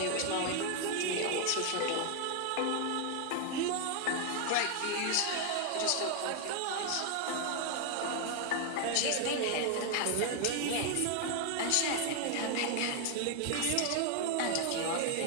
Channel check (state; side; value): different; both; correlation 0.00